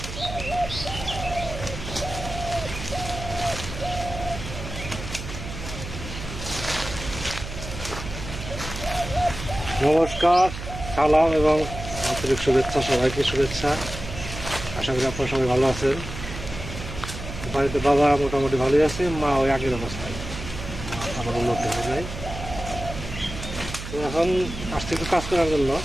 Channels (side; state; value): right; noise; hum, 9 dB below the sound